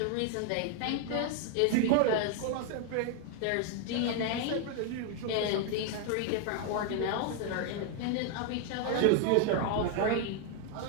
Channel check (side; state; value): both; different; correlation 0.00